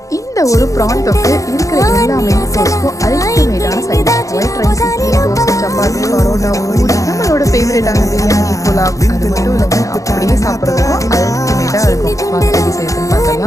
இந்த ஒரு ப்ரான் தொக்கு இருக்கிற எல்லா main கோர்ஸ்க்கும் அல்டிமேட்டான side dish. White rice, idli, dosa, chapati, parotta, puri, நம்மளோட ஃபேவரட்டான பிரியாணி, புலாவ், அது மட்டும் இல்லைங்க அப்படியே சாப்பிட்றதுக்கும் அல்டிமேட்டாக இருக்கும். வாங்க எப்படி செய்யறதுன்னு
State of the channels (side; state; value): right; late; 0.16 ms